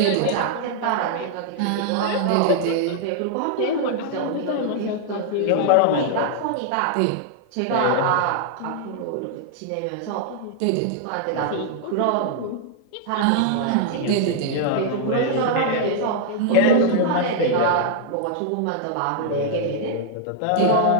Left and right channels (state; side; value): different; both; correlation -0.01